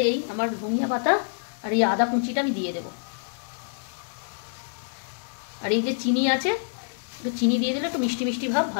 এই আমার ধনিয়া পাতা আর এই আদা কুচিটা আমি দিয়ে দেবো। আর এই যে চিনি আছে, একটু চিনি দিয়ে দিলে একটু মিষ্টি মিষ্টি ভাব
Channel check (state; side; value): silent; right; 60 dB below the other